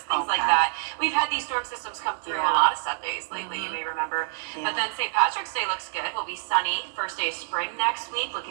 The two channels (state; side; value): silent; left; digital silence